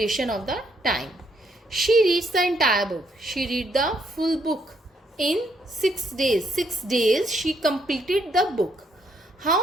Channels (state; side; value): normal; both; correlation 0.72